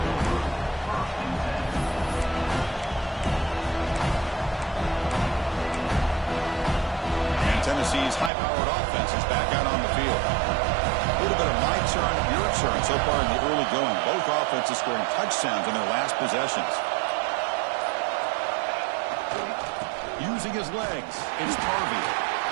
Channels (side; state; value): left; drops out; at 8.3 s